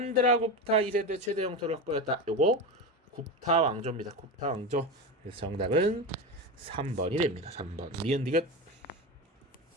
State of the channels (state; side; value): normal; both; correlation 0.20